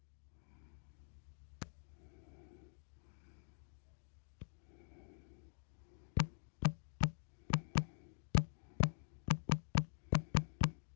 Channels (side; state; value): right; silent; digital silence